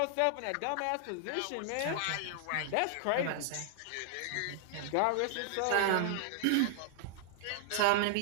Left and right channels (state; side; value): different; both; correlation -0.01